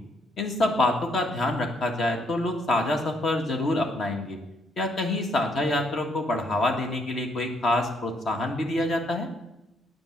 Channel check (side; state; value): both; normal; correlation 0.71